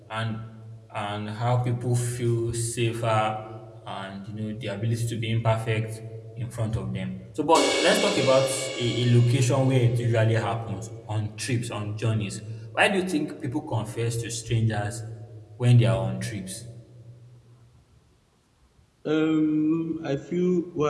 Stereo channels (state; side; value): identical; both; correlation 1.00